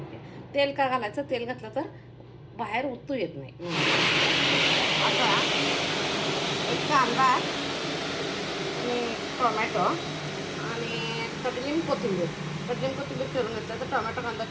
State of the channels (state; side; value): identical; both; correlation 1.00